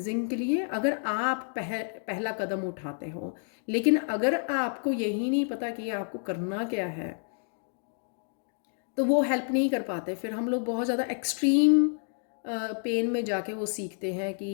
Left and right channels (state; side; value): silent; right; 58 dB below the other